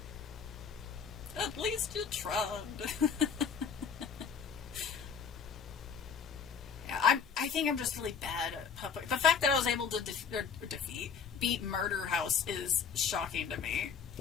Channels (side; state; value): right; quieter; 6.6 dB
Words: At least you tried. Yeah, I think I'm just really bad at puppet. The fact that I was able to beat Murder House is shocking to me.